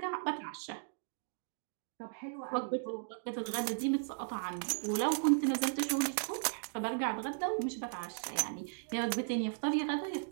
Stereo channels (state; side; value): silent; left; digital silence